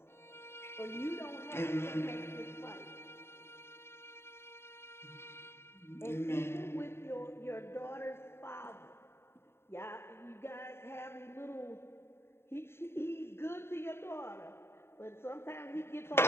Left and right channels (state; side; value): late; right; 0.12 ms